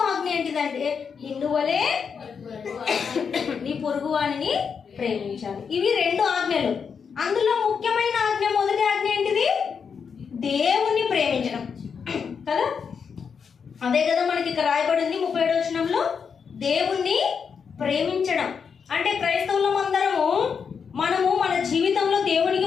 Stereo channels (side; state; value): right; quieter; 6.3 dB